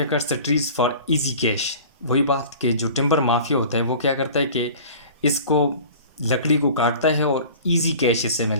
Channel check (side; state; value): both; inverted; correlation -0.42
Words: cuts the trees for easy cash. वही बात कि जो टिम्बर माफिया होता है वो क्या करता है कि इसको लकड़ी को काटता है और इजी कैश इससे मिल